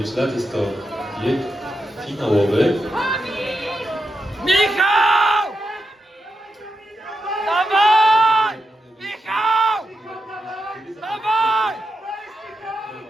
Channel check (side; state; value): both; normal; correlation 0.86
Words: lat. Jest to bieg finałowy. Michał! Dawaj! Michał! Dawaj!